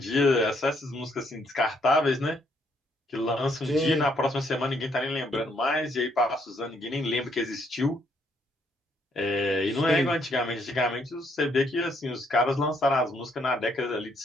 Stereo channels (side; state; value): both; normal; correlation 0.71